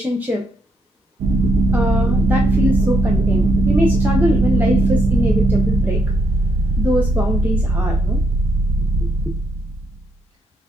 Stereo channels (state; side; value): normal; both; correlation 0.76